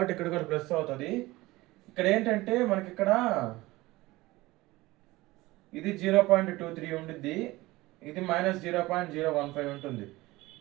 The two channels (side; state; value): left; quieter; 19.7 dB